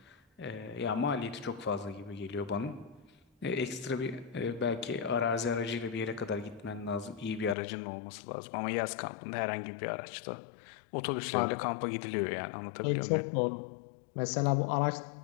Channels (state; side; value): drops out; right; at 7.6 s